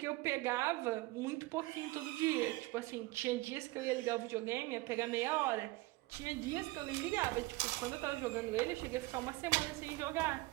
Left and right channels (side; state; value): left; quieter; 21.0 dB